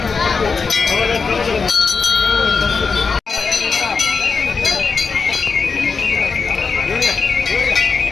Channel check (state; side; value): quieter; right; 5.0 dB